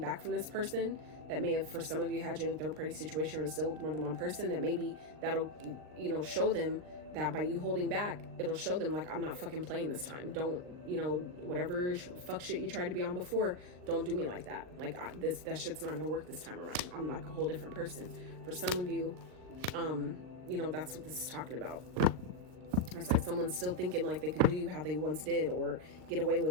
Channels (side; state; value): left; late; 39 ms